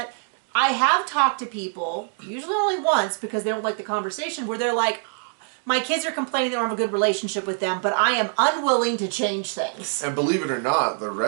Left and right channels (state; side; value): silent; left; 55 dB below the other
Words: I have talked to people, usually only once because they don't like the conversation, where they're like, my kids are complaining they don't have a good relationship with them, but I am unwilling to change things. And believe it or not, the